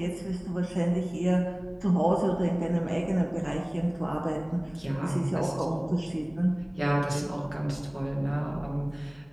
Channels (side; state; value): left; noise; hum, 29 dB below the sound